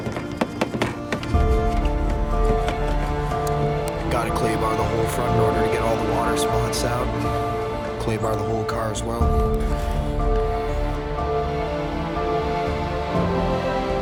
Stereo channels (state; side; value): identical; both; correlation 1.00